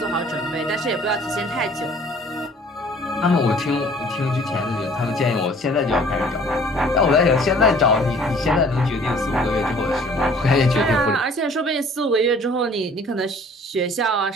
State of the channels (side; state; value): both; normal; correlation 0.54